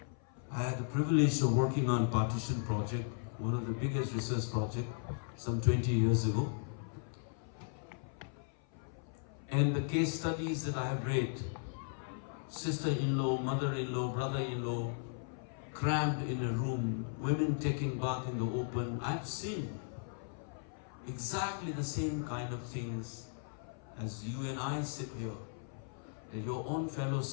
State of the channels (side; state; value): right; silent; 53 dB below the other